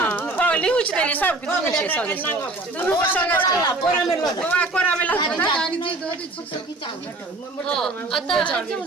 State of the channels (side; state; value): left; quieter; 3.0 dB